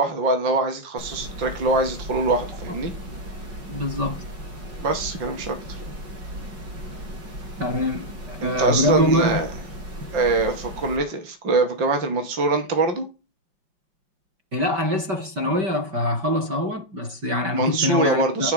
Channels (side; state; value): left; late; 5.3 ms